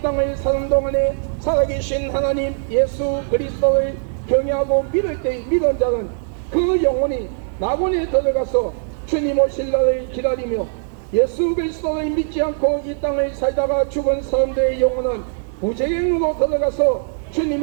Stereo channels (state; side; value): silent; left; digital silence